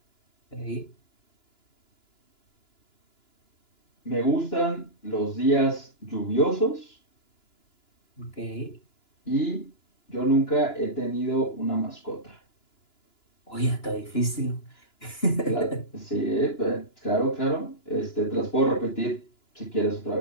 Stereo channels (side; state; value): right; late; 2.9 ms